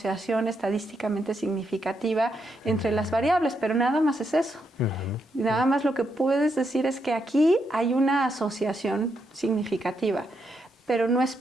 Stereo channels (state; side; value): normal; both; correlation 0.80